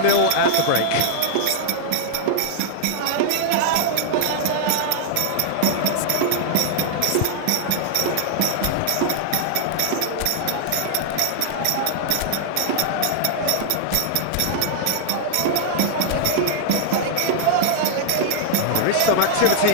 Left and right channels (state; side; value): different; both; correlation -0.01